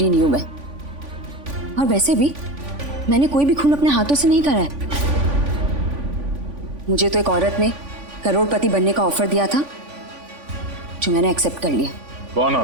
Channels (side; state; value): left; late; 3.5 ms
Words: नहीं हूं मैं। और वैसे भी मैंने कोई भी खून अपने हाथों से नहीं करा है। मुझे तो एक औरत ने करोड़पति बनने का ऑफर दिया था जो मैंने एक्सेप्ट कर लिया। कौन